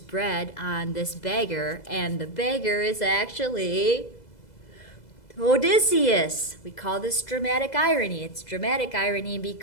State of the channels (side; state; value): right; late; 2.0 ms